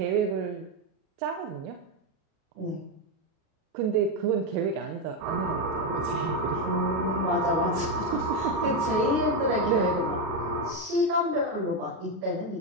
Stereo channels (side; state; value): left; late; 37 ms